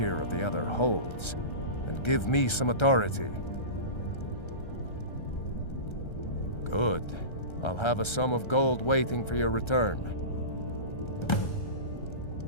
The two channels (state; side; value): late; right; 1.3 ms